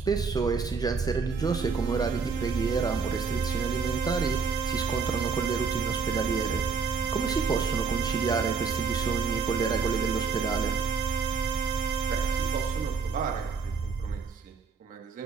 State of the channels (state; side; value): quieter; left; 5.2 dB